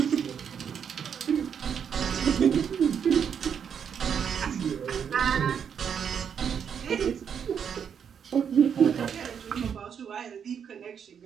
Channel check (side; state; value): left; quieter; 7.6 dB